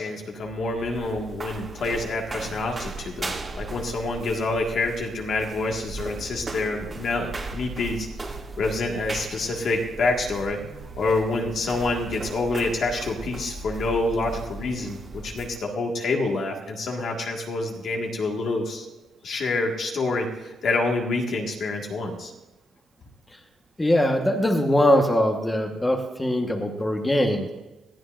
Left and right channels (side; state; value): both; normal; correlation 0.81